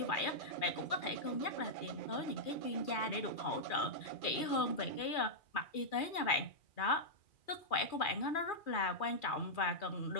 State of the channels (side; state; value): right; late; 2.4 ms